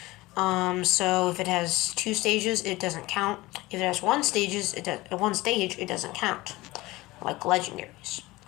So if it has 2 stages, it doesn't count. If it has 1 stage, it doesn't count, like legendaries.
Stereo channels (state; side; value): quieter; right; 19.9 dB